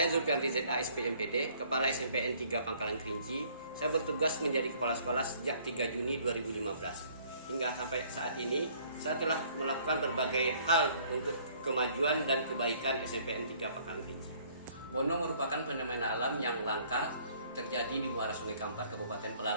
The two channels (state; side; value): inverted; both; correlation -0.59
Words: Zulfian ZA SPMPD, Kepala SMPN 3 Pangkalan Kerinci. Saya bertugas menjadi kepala sekolah sejak 3 Juni 2015. Hingga sampai saat ini, saya telah melakukan berbagai hal untuk kemajuan dan kebaikan SMPN 3 Pangkalan Kerinci. Bono merupakan fenomena alam yang langka terjadi di muara Sungai Kampar, Kabupaten